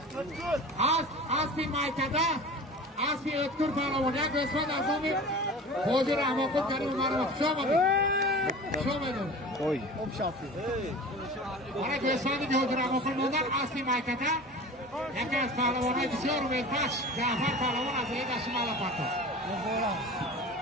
Asli maykada. Asli öttür Parlavo. Ya gösmen azami. Hozir Ahmakut karim umarım. Şomadı. Koy. Bana gösterdi ki Hocur Ahmakut'dan asli maykada. Yakaz Parlavon'a düşüyor ve baş. Cafer Parlavon azıya taşımalı patı.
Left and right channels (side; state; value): both; normal; correlation 0.37